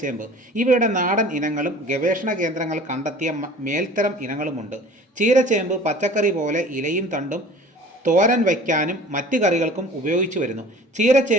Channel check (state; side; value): normal; both; correlation 0.44